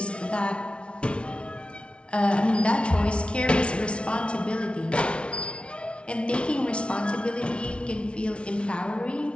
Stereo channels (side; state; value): right; late; 0.059 ms